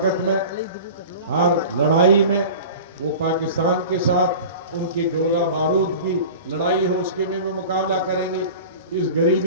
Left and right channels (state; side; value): inverted; both; correlation -0.37